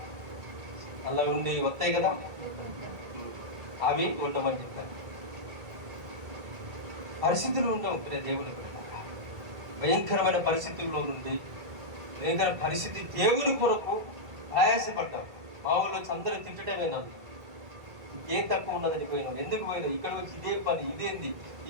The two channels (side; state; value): left; late; 1.8 ms